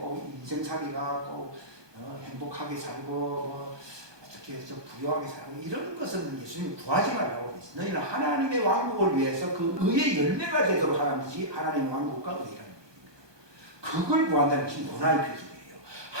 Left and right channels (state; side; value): late; left; 1.2 ms